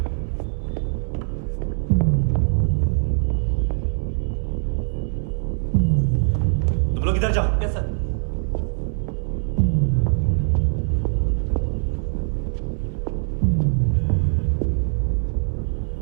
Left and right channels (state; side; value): silent; left; digital silence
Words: तुम लोग इधर जाओ। Yes sir.